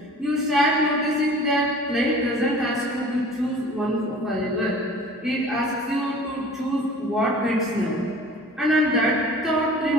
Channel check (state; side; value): normal; both; correlation 0.45